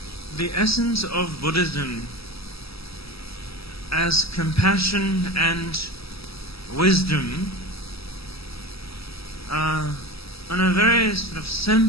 The essence of Buddhism as compassion and wisdom on a very sort of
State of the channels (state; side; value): late; right; 0.77 ms